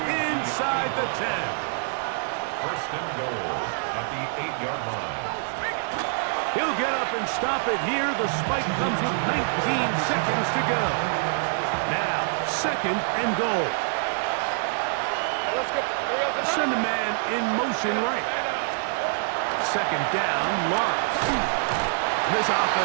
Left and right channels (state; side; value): silent; left; 61 dB below the other